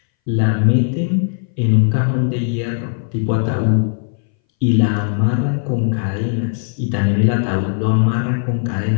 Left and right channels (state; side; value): silent; right; 62 dB below the other